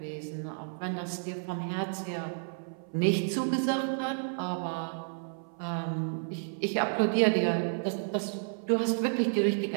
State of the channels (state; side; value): silent; left; 57 dB below the other